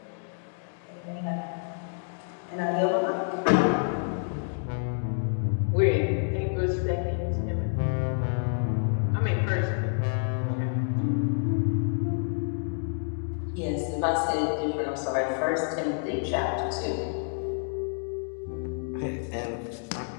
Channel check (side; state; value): right; silent; 59 dB below the other